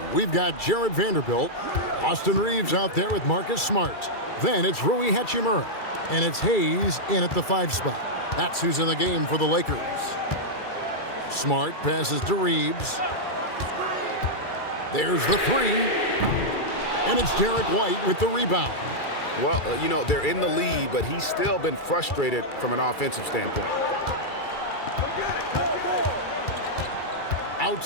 we've got Jared Vanderbilt. Austin Reeves out there with Marcus Smart. Then it's Rui Hachimura. And it's Hayes in at the 5 spot. That's who's in the game for the Lakers. Smart passes to Reeves. There's the 3. And it's Derek White with the rebound. Well, they're in the lead, but he's still been frustrated from an offensive standpoint.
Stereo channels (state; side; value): late; right; 2.3 ms